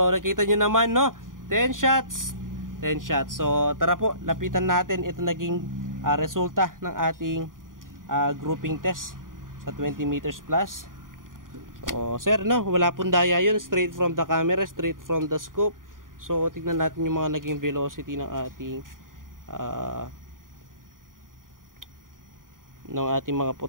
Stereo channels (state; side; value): late; left; 0.90 ms